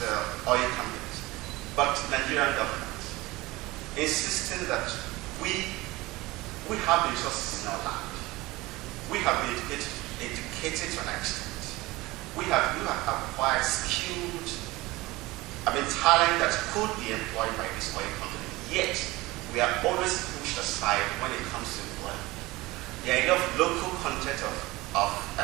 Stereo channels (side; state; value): left; quieter; 20.5 dB